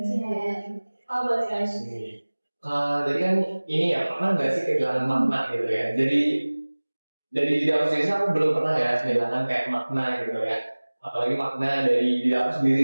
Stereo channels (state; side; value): inverted; both; correlation -1.00